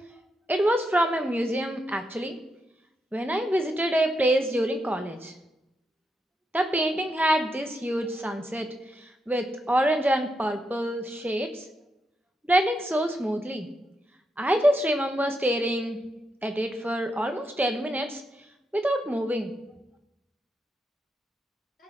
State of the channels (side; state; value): both; normal; correlation 0.83